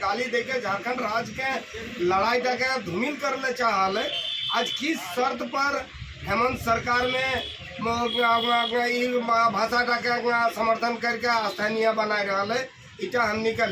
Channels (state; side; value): identical; both; correlation 1.00